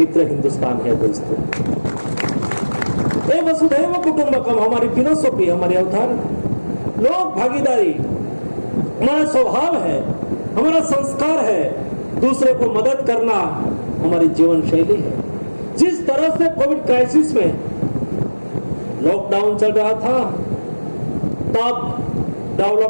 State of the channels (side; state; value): both; inverted; correlation -1.00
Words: हिंदुस्तान है। दोस्तों, ये वसुधैव कुटुंबकम हमारी फिलोसॉफी, हमारी अवधारणा, लोक भागीदारी हमारा स्वभाव है, हमारा संस्कार है, दूसरे को मदद करना हमारी जीवन शैली है। जिस तरह से कोविड क्राइसिस में लॉकडाउन चल रहा था, तब